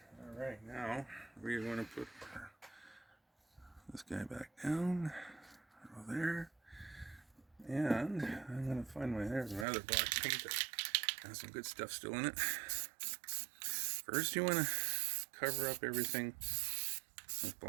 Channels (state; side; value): drops out; left; at 9.7 s